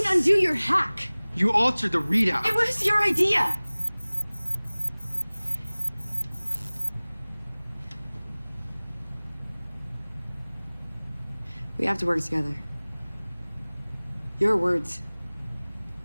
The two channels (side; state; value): both; inverted; correlation -1.00